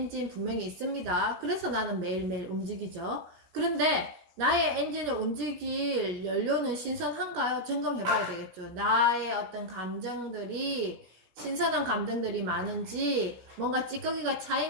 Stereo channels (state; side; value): late; left; 16 ms